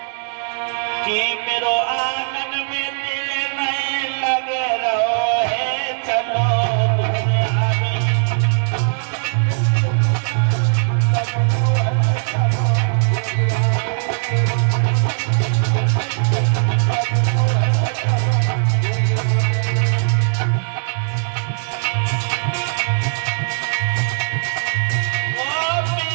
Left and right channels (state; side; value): silent; left; 66 dB below the other